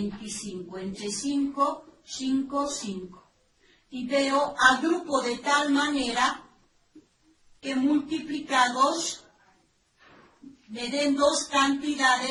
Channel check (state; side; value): identical; both; correlation 1.00